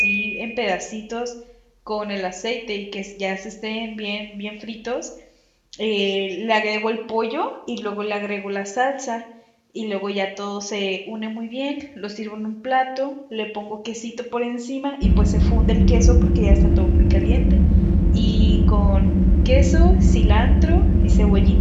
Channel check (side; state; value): both; identical; correlation 1.00